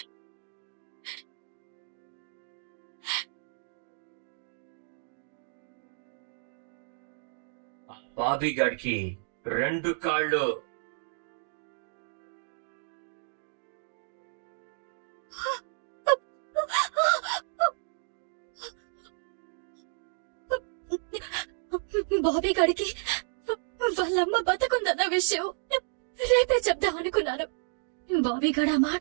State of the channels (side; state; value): left; silent; digital silence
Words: బాబీ గాడికి 2 కాళ్ళు. బాబీ గాడికి వాళ్ళమ్మ బతుకుందన్న విషయం రేపే చెప్దాం అనుకున్నాను. బాబీ గాడు ఆ